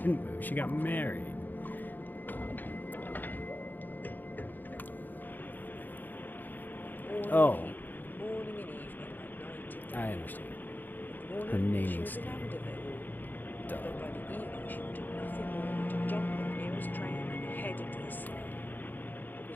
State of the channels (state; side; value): late; right; 0.087 ms